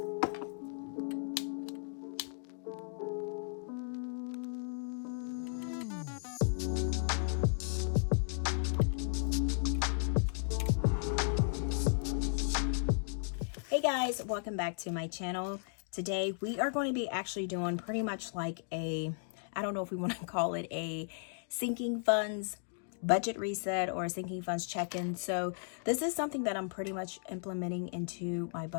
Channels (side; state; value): right; silent; digital silence